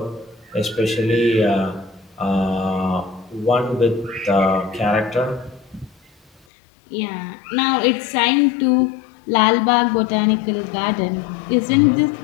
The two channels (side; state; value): right; drops out; at 6.4 s